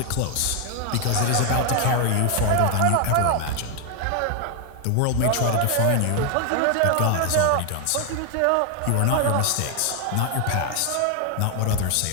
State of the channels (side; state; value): both; different; correlation 0.00